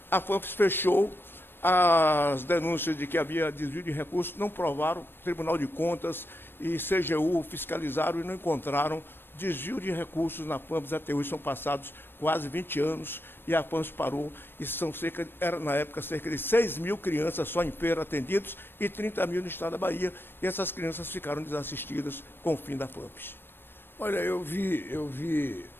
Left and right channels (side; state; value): right; late; 0.10 ms